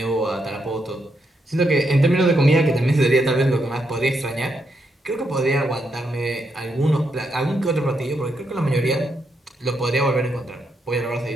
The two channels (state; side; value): normal; both; correlation 0.80